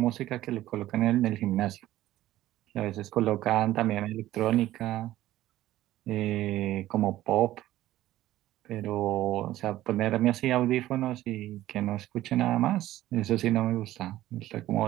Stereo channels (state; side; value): quieter; left; 14.8 dB